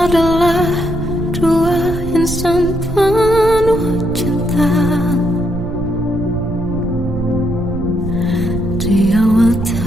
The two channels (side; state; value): right; noise; rumble, 8 dB below the sound